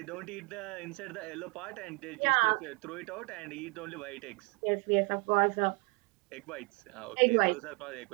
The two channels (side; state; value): left; quieter; 31.5 dB